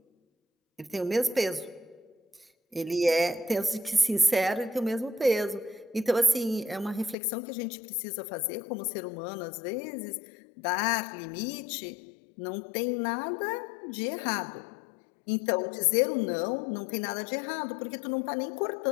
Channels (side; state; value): right; drops out; at 7.2 s